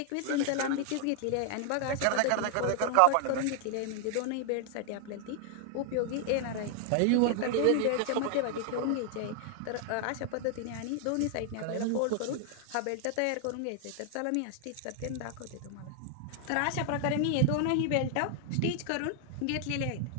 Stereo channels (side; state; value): both; different; correlation 0.00